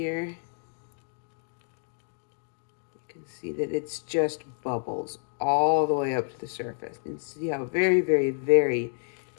You can see that it's just bubbles all the way up to the surface. And see how very, very, very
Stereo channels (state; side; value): silent; right; digital silence